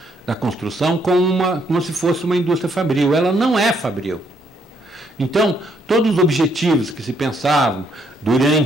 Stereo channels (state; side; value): normal; both; correlation 0.71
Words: construção como se fosse uma indústria fabril. Ela não é fabril. Então, todos os objetivos que se pensavam